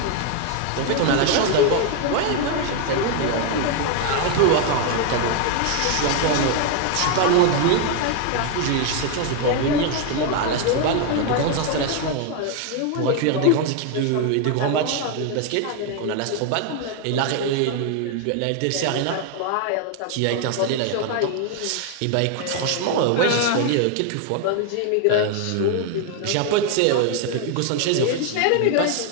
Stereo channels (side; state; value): both; different; correlation 0.01